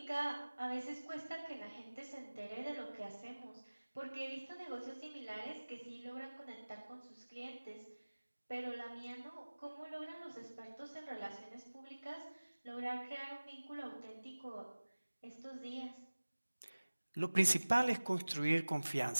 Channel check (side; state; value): both; inverted; correlation -1.00